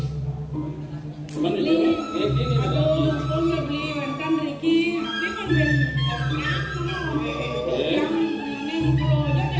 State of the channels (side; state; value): both; identical; correlation 1.00